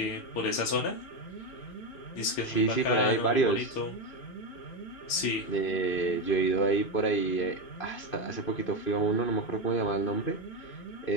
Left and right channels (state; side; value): late; right; 2.5 ms